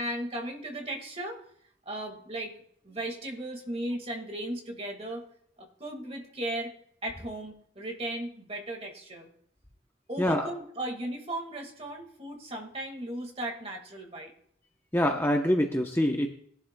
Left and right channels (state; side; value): normal; both; correlation 0.66